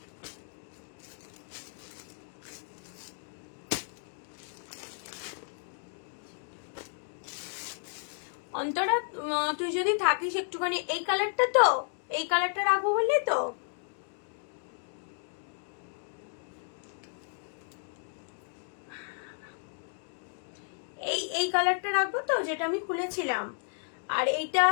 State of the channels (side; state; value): right; silent; 56 dB below the other